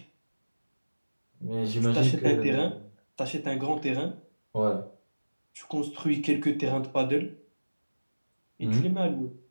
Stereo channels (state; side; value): inverted; both; correlation -1.00